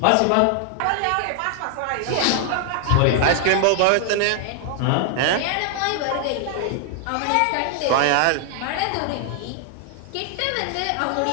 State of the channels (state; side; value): different; both; correlation 0.00